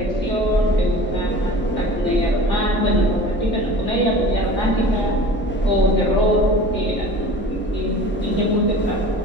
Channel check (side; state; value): both; normal; correlation 0.41